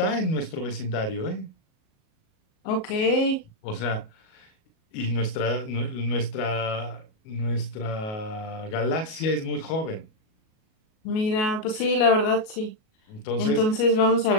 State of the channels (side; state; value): right; late; 37 ms